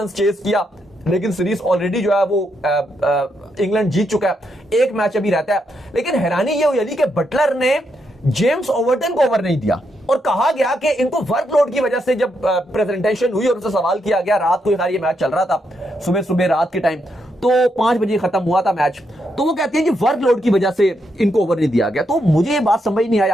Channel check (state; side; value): normal; both; correlation 0.80